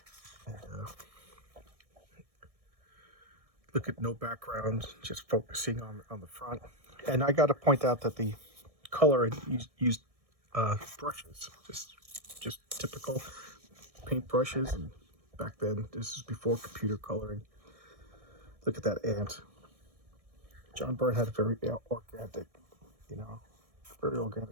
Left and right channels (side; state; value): left; late; 1.6 ms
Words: And, look at no background, just focusing on the front. And I got to point out that the color used brushes, just typical paint brushes. And back then, this is before computer coloring. Look at that ant. John Byrne had a very organic, very